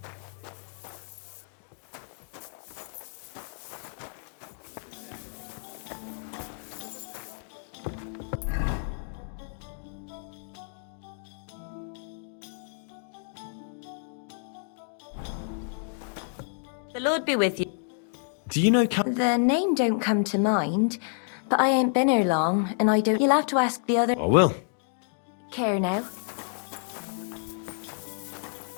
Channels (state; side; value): silent; right; digital silence